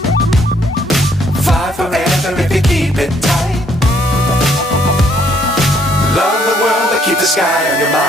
Fly forever if you keep it tight. Love the world but keep the sky on your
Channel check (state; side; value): normal; both; correlation 0.67